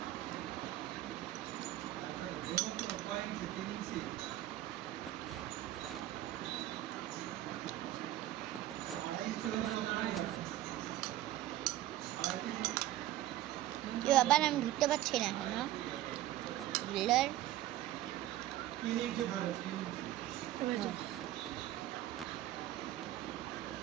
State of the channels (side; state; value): left; quieter; 14.1 dB